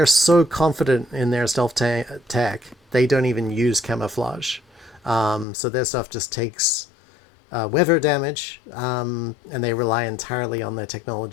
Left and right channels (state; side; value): drops out; right; at 5.5 s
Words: so confident in their stealth tech they don't even use camouflage. So their stuff just takes weather damage, and they rely entirely on their